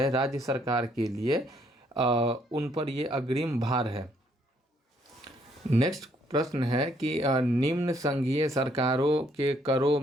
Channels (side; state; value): both; normal; correlation 0.68